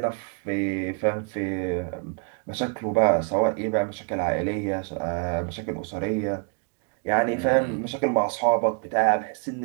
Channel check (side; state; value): left; quieter; 38.3 dB